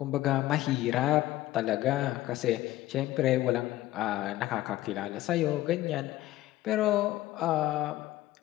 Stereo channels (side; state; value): right; quieter; 15.7 dB